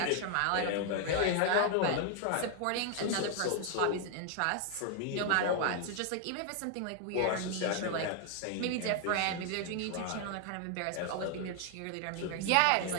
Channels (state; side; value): different; both; correlation 0.00